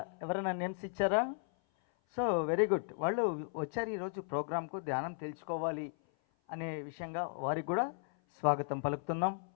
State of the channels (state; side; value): silent; right; 54 dB below the other